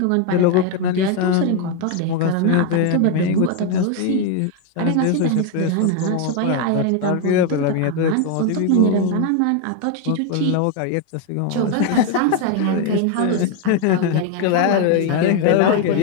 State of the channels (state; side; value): different; both; correlation 0.01